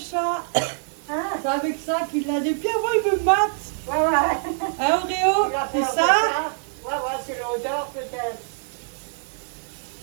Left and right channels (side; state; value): left; silent; 62 dB below the other